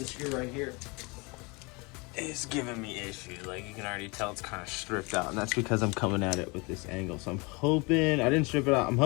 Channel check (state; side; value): quieter; right; 27.8 dB